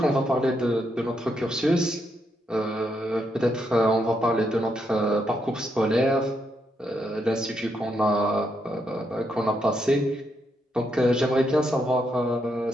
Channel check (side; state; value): both; normal; correlation 0.79